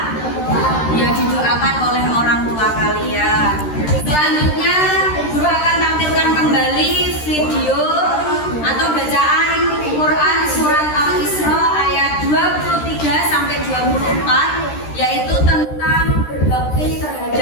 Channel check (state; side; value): late; right; 13 ms